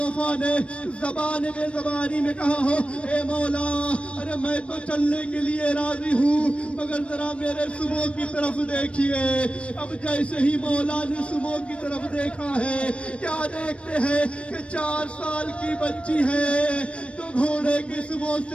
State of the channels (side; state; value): right; late; 0.060 ms